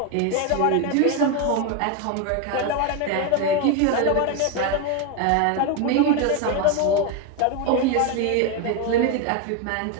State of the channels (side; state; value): both; different; correlation 0.02